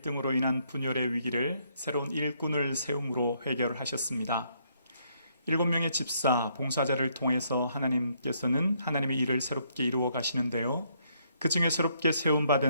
인한 분열의 위기를 새로운 일꾼을 세움으로 해결을 하셨습니다. 7명의 집사, 봉사자를 통해서 하나님께서는 하나님의 일을 새롭게 이루어 가시는데요. 그 중에 새롭게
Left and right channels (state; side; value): inverted; both; correlation -0.71